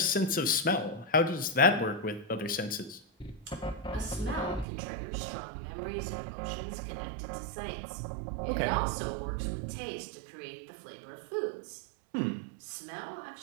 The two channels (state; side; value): drops out; left; at 4.7 s